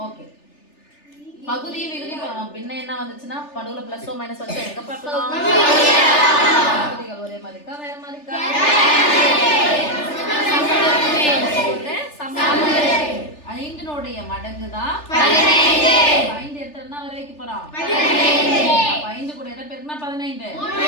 ஓகே. பகுதி விகுதி பின்ன என்ன வந்துச்சுன்னா நடுவுல பிளஸ் ஓ மைனஸ் வச்சா எங்க பார்க்கலாம்? பகுதிகள் ஒரே மாதிரி இருக்கா வேற மாதிரி இருக்கா? ஐந்தினுடைய மடங்கு தான் 15. 5 எடுத்தா என்ன வர வைக்க போறோம்? 15. 5 கூட எதை பெருக்கினா 15. 5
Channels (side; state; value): right; late; 3.4 ms